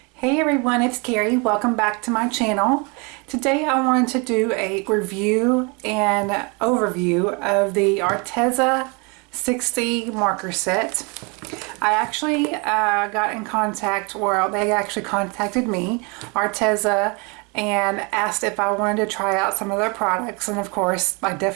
Hey everyone, it's Carrie. Welcome back to my channel. Today I wanted to do a review and overview of the Arteza 60 marker set. I actually got in contact, or they actually contacted me, Arteza, and asked if I wanted to try out some of their products, and of course I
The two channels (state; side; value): quieter; left; 30.9 dB